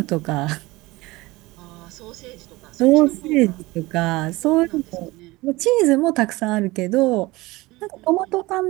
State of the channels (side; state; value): left; quieter; 20.9 dB